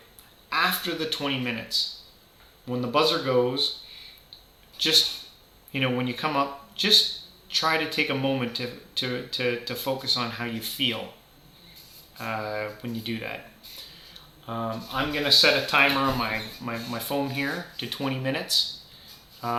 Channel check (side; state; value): both; identical; correlation 1.00